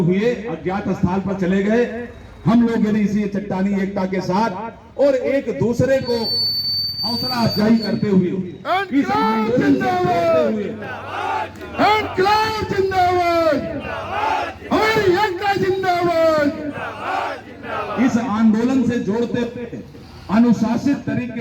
अज्ञात स्थल पर चले गए, हम लोग यदि इसी चट्टानी एकता के साथ और एक दूसरे को हौसला अफजाई करते हुए इस आंदोलन से जोड़ते हुए इनकलाब जिंदाबाद, हमारी एकता जिंदाबाद। इस आंदोलन से जोड़ते हुए अनुशासित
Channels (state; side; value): identical; both; correlation 1.00